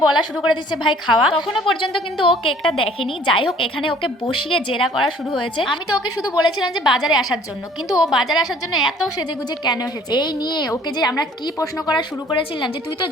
বলা শুরু করে দিচ্ছে ভাই খাওয়া। তখনও পর্যন্ত কিন্তু ও কেকটা দেখেনি। যাই হোক, এখানে ওকে বসিয়ে জেরা করা শুরু হয়েছে। আমি তো ওকে শুধু বলেছিলাম যে বাজারে আসার জন্য, কিন্তু ও বাজারে আসার জন্য এত সেজে গুজে কেন এসেছে এই নিয়ে ওকে যে আমরা কি প্রশ্ন করা শুরু করেছিলাম যে তুই তো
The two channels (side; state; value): both; normal; correlation 0.55